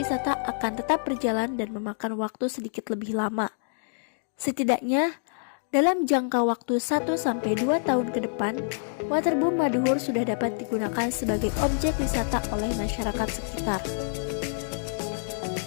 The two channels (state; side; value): silent; right; digital silence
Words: akan tetap berjalan dan memakan waktu sedikit lebih lama. Setidaknya, dalam jangka waktu 1-2 tahun ke depan, Waterboom Maduhur sudah dapat digunakan sebagai objek wisata oleh masyarakat sekitar.